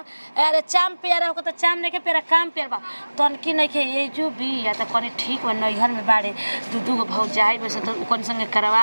अरे चाम पेरा हो त चाम नहीं के पेरा काम पेरबा तन की नहीं के ये जो भी या त कने ठीक बा नैहर में बाड़े दूगो भौ जाई बस त कोन संगे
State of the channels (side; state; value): both; inverted; correlation -1.00